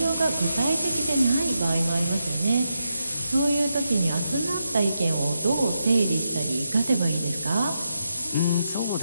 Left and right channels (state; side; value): inverted; both; correlation -0.85